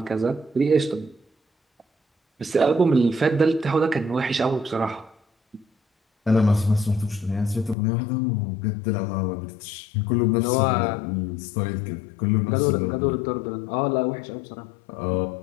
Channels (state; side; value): drops out; right; at 7.8 s